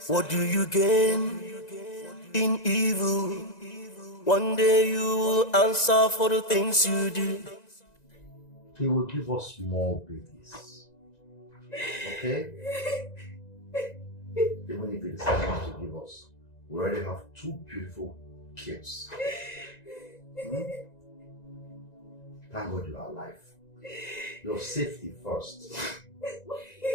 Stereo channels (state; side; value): late; right; 1.9 ms